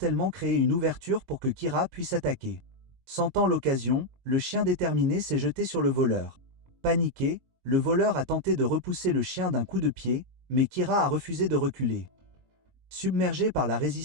créé une ouverture pour que Kira puisse attaquer. Sentant l'occasion, le chien déterminé s'est jeté sur le voleur. Paniqué, le voleur a tenté de repousser le chien d'un coup de pied, mais Kira a refusé de reculer. Submergé par la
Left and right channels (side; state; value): left; late; 22 ms